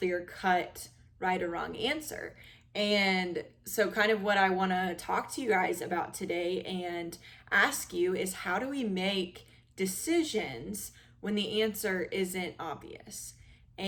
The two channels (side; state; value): both; identical; correlation 1.00